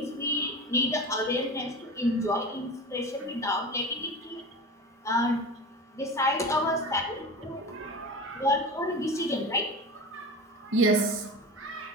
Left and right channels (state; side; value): normal; both; correlation 0.30